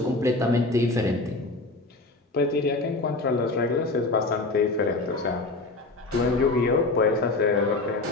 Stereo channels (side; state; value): right; quieter; 3.2 dB